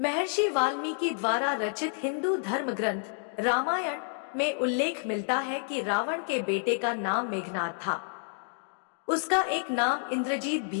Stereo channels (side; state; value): right; silent; 58 dB below the other